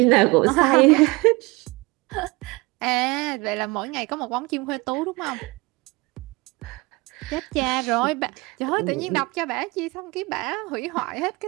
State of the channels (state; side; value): quieter; left; 24.4 dB